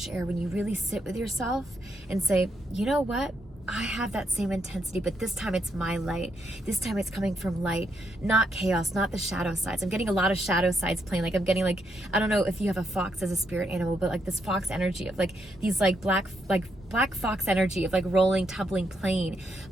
air when you really sit with yourself and say, you know what? I have that same intensity, but this time it's my light. This time it's coming from light, not chaos, not the shadow sides. I'm getting a lot of shadow sides playing. Like I'm getting like, I don't know if you have a fox as a spirit animal, but like this fox energy of like these like black fox energy of like rolling, tumbling, playing.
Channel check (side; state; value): both; normal; correlation 0.79